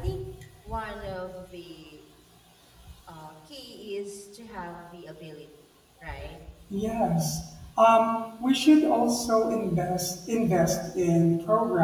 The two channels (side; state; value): both; identical; correlation 1.00